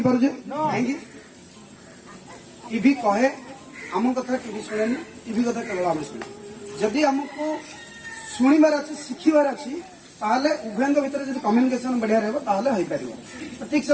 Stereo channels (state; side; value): identical; both; correlation 1.00